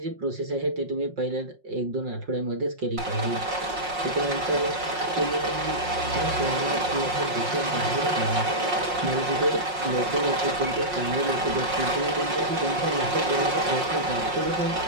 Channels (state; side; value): late; left; 5.5 ms